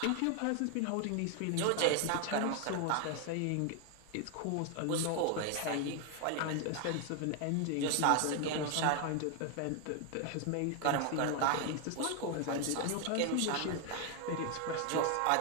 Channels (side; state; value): both; different; correlation 0.01